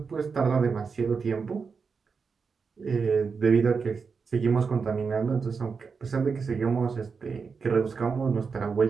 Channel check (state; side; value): quieter; left; 5.3 dB